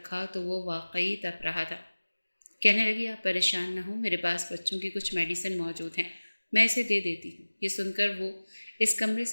تو وہ واقعی تپ رہا تھا۔ کہنے لگی، آپ پریشان نہ ہوں، میرے پاس بچوں کی کچھ میڈیسن موجود ہیں، میں اسے دے دیتی ہوں۔ یہ سن کر وہ اس کمرے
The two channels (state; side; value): inverted; both; correlation -1.00